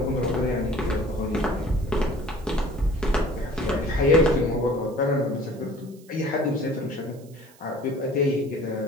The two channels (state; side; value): noise; right; hiss, 27 dB below the sound